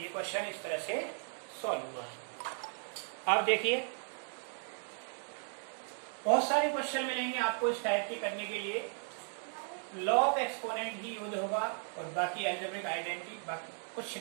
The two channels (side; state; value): left; silent; 54 dB below the other